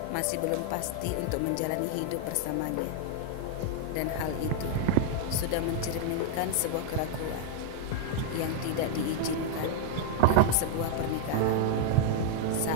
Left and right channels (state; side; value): different; both; correlation 0.00